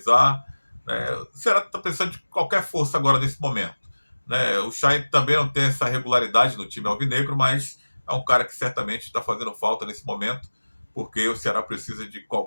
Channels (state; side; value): inverted; both; correlation -1.00